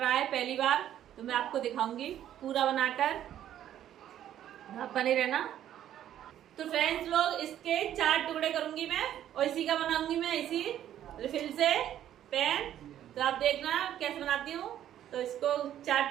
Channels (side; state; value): left; quieter; 11.3 dB